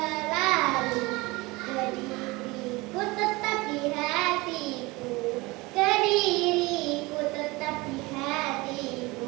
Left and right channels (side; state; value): left; quieter; 22.9 dB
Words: Kediriku tetap di hatiku, Kediriku tetap di